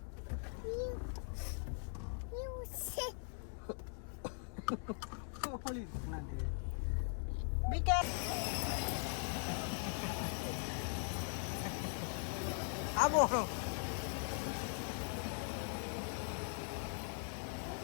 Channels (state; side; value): silent; right; 50 dB below the other